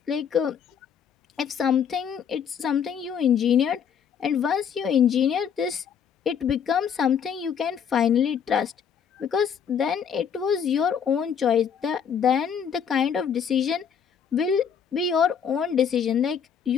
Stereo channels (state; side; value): quieter; right; 7.6 dB